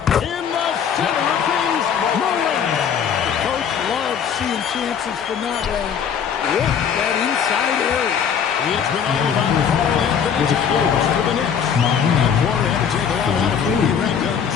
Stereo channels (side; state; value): right; quieter; 7.6 dB